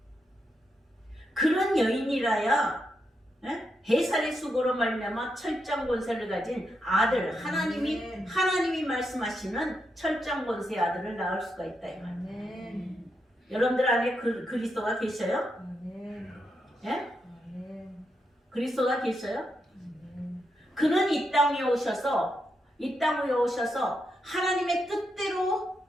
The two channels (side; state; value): both; normal; correlation 0.83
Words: 그런 여인이라야 해살의 수고로 말미암아 철장 권세를 가진 아들 하나님이 말씀하시는 철장 권세의 아들을 낳을 수가 있다 이 말. 아멘. 여러분들 안에 그리스도가 계셔요? 아멘. 예? 아멘. 그리스도가 계셔요? 아멘. 그는 이 땅에 오셔서 하나님의 뜻대로